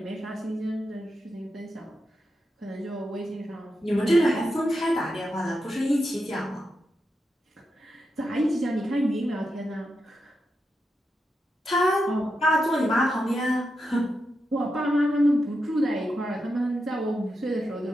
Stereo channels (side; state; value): both; normal; correlation 0.87